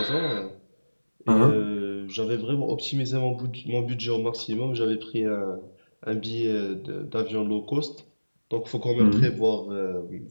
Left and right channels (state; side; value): inverted; both; correlation -1.00